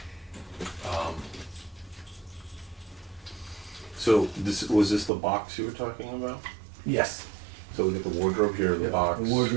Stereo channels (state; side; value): drops out; left; at 5.1 s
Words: So, was this the box you were talking about? yes, So we get the wardrobe here, the box. the